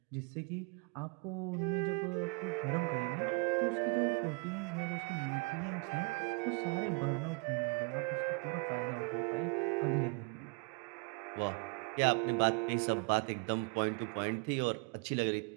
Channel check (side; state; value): left; quieter; 31.3 dB